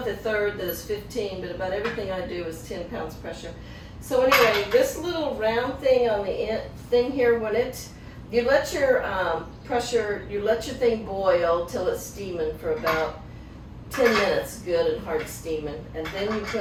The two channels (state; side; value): identical; both; correlation 1.00